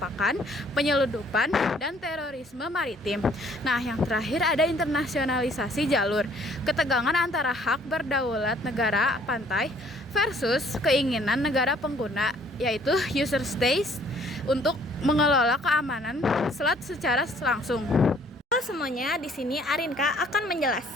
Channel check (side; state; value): both; normal; correlation 0.60